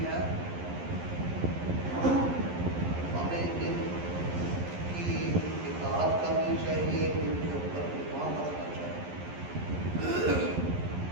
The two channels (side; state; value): left; late; 11 ms